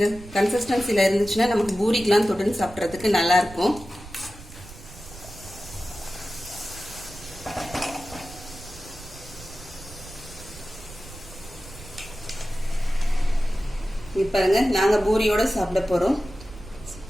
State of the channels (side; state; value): right; noise; rumble, 16 dB below the sound